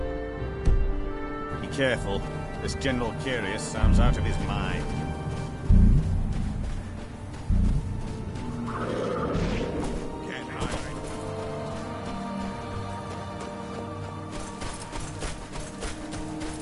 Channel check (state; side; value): identical; both; correlation 1.00